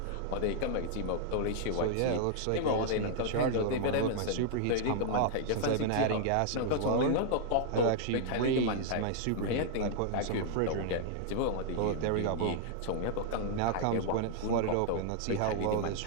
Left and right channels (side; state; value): both; different; correlation -0.01